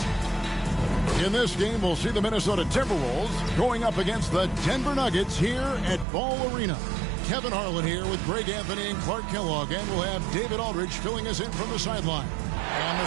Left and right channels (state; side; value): drops out; left; at 6.1 s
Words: In this game, we'll see the Minnesota Timberwolves going up against the Denver Nuggets here at Ball Arena. Kevin Harlan here with Greg Anthony and Clark Kellogg, and we'll have David Aldridge filling us in from the sideline. And the